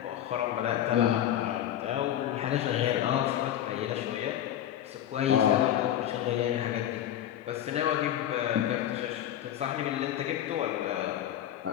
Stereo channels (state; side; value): quieter; right; 11.3 dB